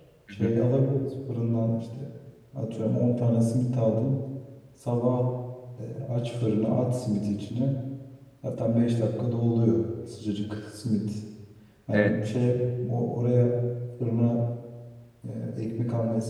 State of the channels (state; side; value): identical; both; correlation 1.00